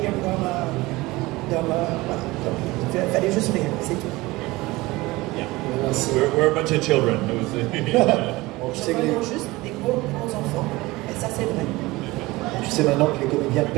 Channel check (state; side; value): quieter; left; 20.6 dB